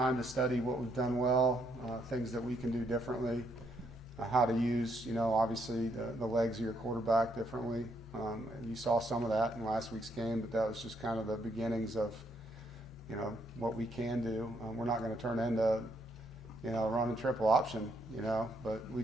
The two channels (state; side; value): normal; both; correlation 0.73